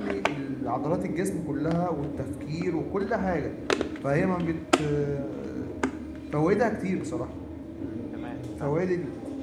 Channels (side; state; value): both; identical; correlation 1.00